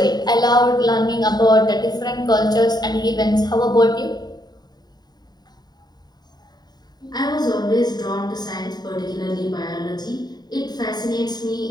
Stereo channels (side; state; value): right; late; 0.20 ms